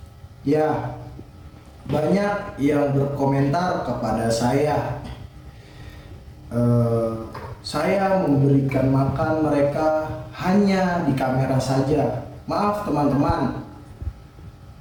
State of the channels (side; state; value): both; identical; correlation 1.00